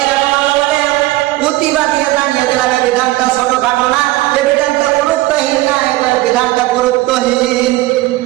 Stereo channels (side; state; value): left; quieter; 18.1 dB